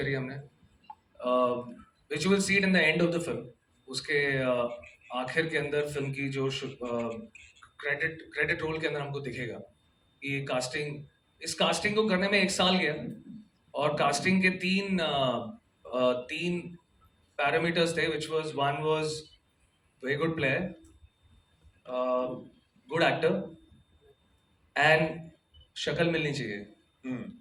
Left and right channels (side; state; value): both; identical; correlation 1.00